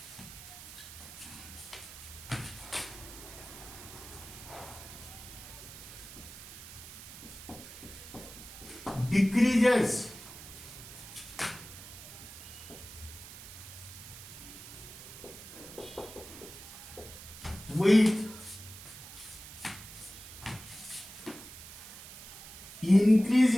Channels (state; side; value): noise; right; hiss, 14 dB below the sound